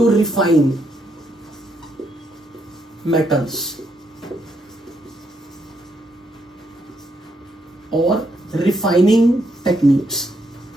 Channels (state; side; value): normal; both; correlation 0.77